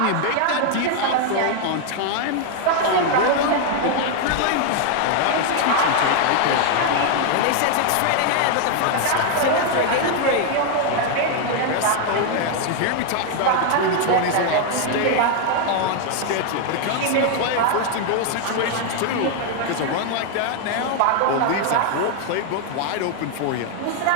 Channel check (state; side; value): different; both; correlation 0.00